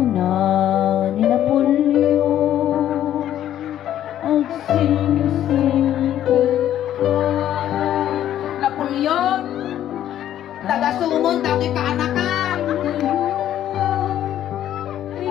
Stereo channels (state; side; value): quieter; right; 11.5 dB